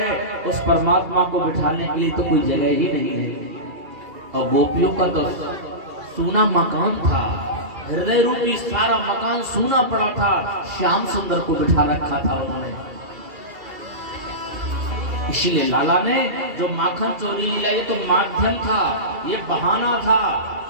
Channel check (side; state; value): left; late; 2.3 ms